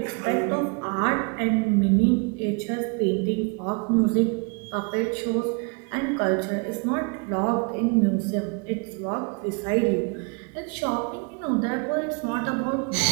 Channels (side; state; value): left; quieter; 33.5 dB